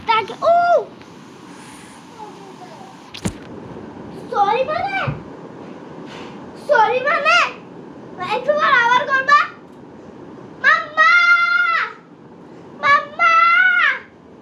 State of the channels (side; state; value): both; identical; correlation 1.00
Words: ও সরি মানে একটু পর আবার করবা। মাম্মা মাম্মা